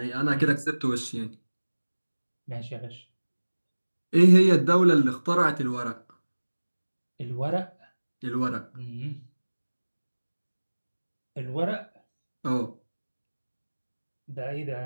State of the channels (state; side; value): inverted; both; correlation -1.00